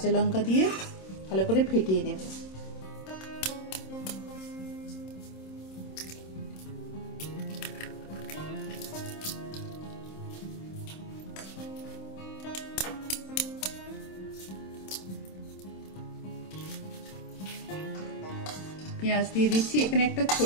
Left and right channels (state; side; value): late; right; 26 ms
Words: লঙ্কা দিয়ে ভালো করে ফেটিয়ে নেব। পেঁয়াজ দিয়ে দিচ্ছি, এখানে একটা